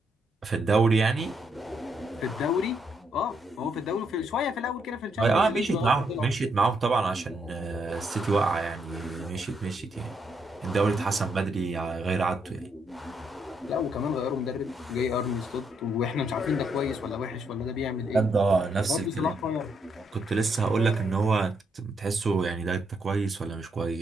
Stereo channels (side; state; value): both; normal; correlation 0.76